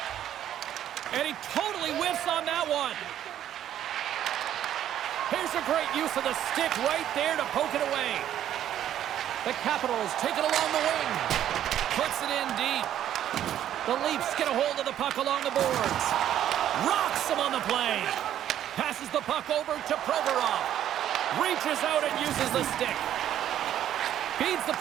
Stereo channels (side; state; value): left; quieter; 11.1 dB